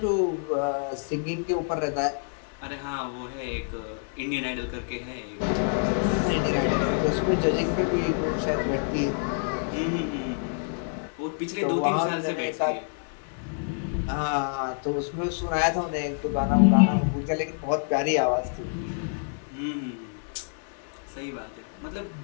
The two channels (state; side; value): silent; right; 60 dB below the other